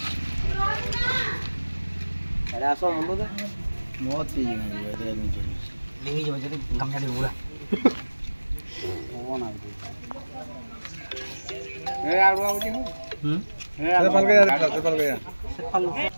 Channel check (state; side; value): inverted; both; correlation -1.00